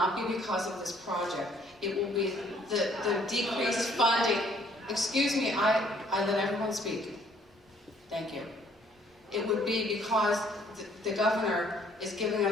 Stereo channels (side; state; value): both; normal; correlation 0.62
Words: be because of this project. It will be the decreased funding. Excuse me, I let everyone speak. Thank you. It would be because the governor is giving